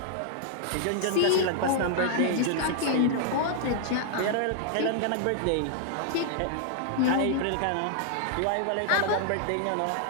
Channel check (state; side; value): different; both; correlation -0.01